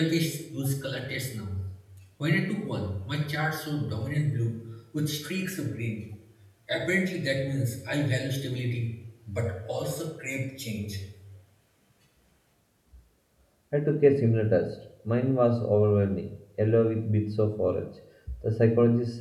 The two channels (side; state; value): both; identical; correlation 1.00